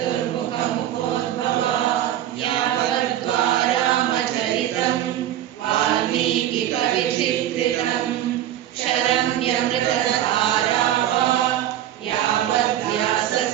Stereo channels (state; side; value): quieter; left; 12.1 dB